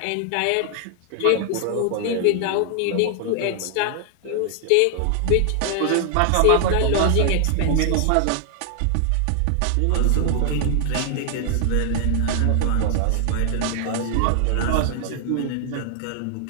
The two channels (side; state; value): both; different; correlation 0.00